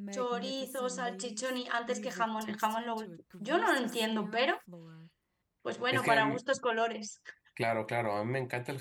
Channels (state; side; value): identical; both; correlation 1.00